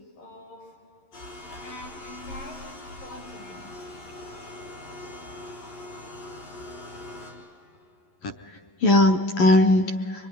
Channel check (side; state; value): right; late; 11 ms